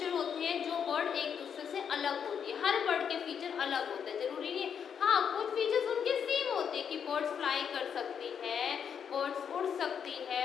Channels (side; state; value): right; quieter; 7.6 dB